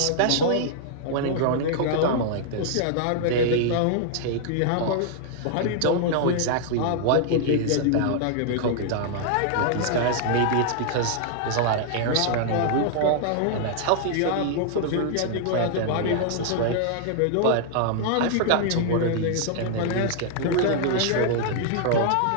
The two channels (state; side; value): different; both; correlation -0.01